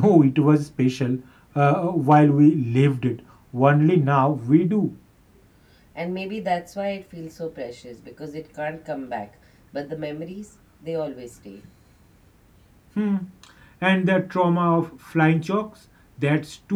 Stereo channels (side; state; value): both; identical; correlation 1.00